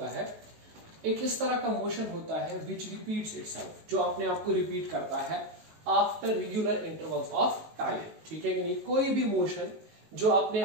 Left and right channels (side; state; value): left; late; 19 ms